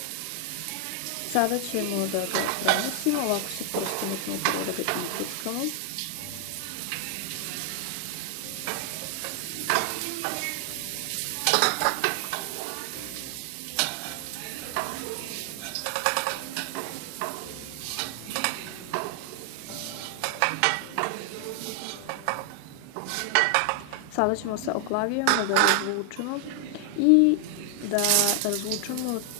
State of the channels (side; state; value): both; different; correlation 0.00